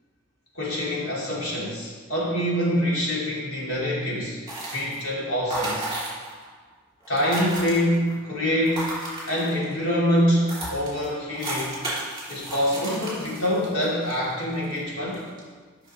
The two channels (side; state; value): both; normal; correlation 0.31